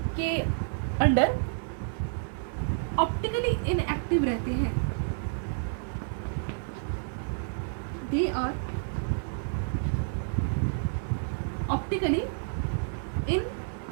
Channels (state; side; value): silent; left; digital silence